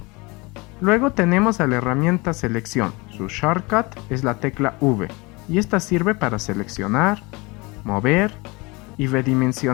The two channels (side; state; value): right; quieter; 25.7 dB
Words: Luego tenemos a la herramienta Selección. Su shortcut es la tecla V y esta sirve para seleccionar, mover y